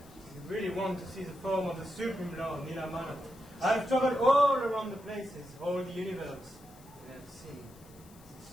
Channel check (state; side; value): noise; left; hiss, 25 dB below the sound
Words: You really want to see the form of the Supreme Lord, Nila Madhava. I have traveled all around the places, all the universe, and I have seen the